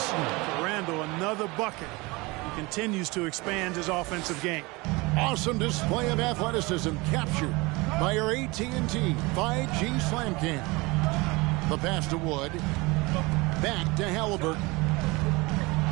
Randall, another bucket. He continues to expand his offensive game. Awesome display of athleticism captured by our AT&T 5G Slam Cam. The pass to Wood. Back to Halliburton.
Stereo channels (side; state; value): left; quieter; 24.2 dB